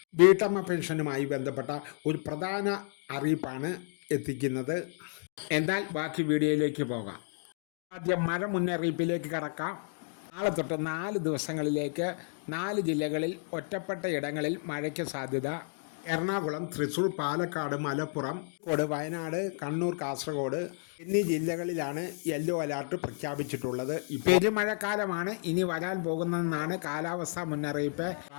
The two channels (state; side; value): silent; right; 57 dB below the other